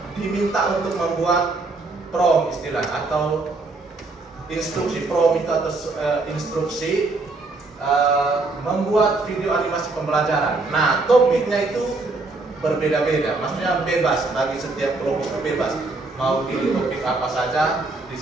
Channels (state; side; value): quieter; left; 3.4 dB